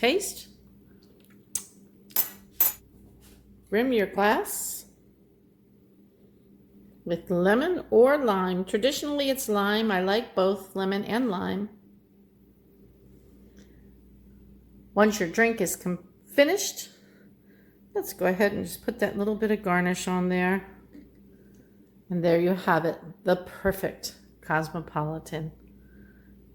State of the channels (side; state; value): both; identical; correlation 1.00